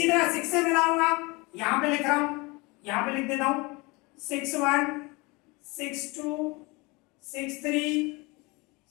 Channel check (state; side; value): quieter; right; 25.7 dB